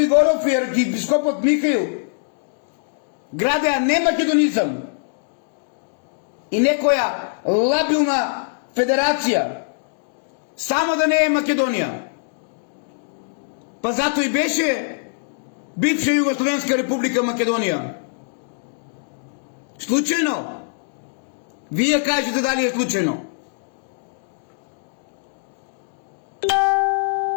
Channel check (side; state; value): right; silent; digital silence